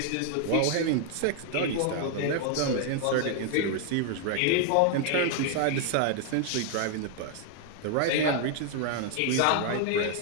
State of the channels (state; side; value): different; both; correlation 0.00